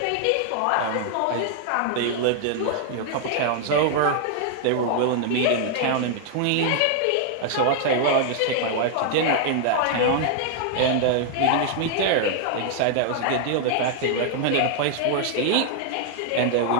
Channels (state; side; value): different; both; correlation 0.00